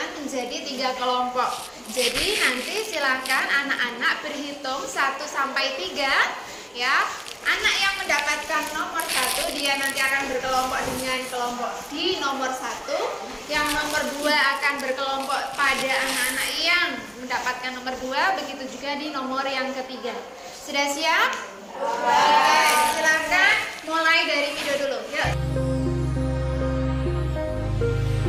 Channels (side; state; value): both; identical; correlation 1.00